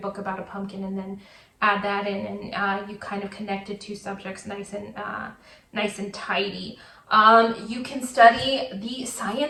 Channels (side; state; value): both; identical; correlation 1.00